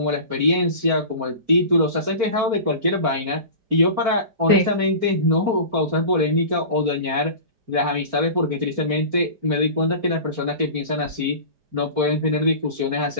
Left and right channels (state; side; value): late; left; 4.4 ms